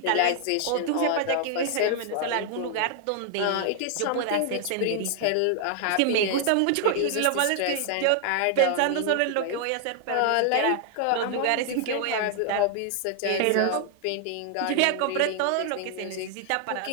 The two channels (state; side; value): different; both; correlation 0.00